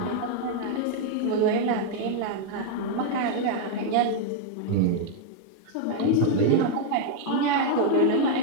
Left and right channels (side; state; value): both; different; correlation 0.00